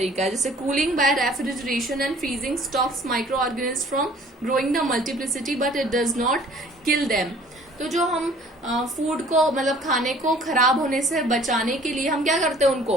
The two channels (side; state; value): both; normal; correlation 0.53